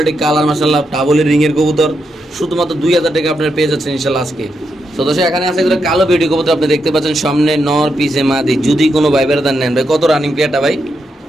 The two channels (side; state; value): both; normal; correlation 0.83